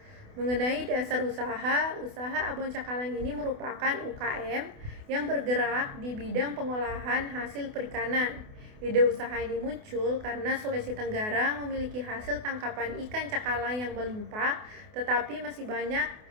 Mengenai dasar usaha Abon Cakalang ini merupakan UKM yang bergerak di bidang pengolahan hasil perikanan. Ide usaha ini muncul karena Sulawesi Tenggara memiliki hasil tangkapan ikan cakalang yang melimpah, tetapi masih banyak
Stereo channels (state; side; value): late; left; 28 ms